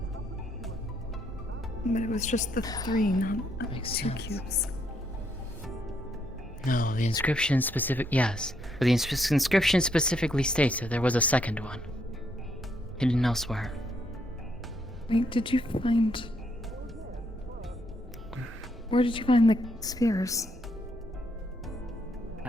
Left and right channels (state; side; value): normal; both; correlation 0.74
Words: But it was just the 3, not Makes 2 sense. cubes. No, the inscription yes. But the inscription specifically states that there was a second one. Hidden elsewhere. Wait, did you find... Where did you find the spheres?